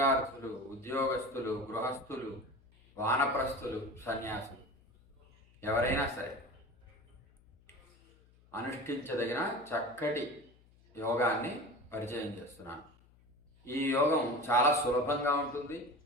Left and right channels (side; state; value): left; noise; hum, 29 dB below the sound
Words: ఉద్యోగస్తులు, గృహస్థులు, వానప్రస్థులు, సన్యాసులు ఎవరైనా సరే అనుష్ఠించదగిన చక్కటి యోగాన్ని పరిచయం చేస్తున్నాను. ఈ యోగం చాలా సులభంగా ఉంటుంది,